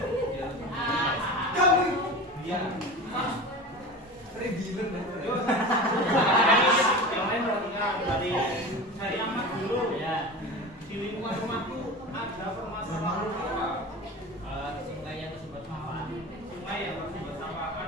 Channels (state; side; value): normal; both; correlation 0.31